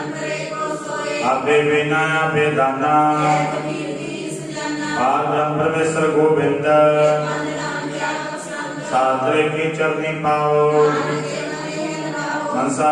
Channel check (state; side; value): identical; both; correlation 1.00